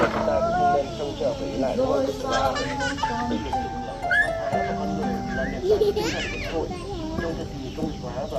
chúng ta cũng không nên trông chờ với lại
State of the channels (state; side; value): identical; both; correlation 1.00